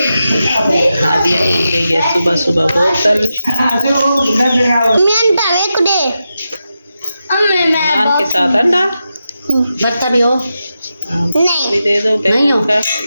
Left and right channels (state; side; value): inverted; both; correlation -0.89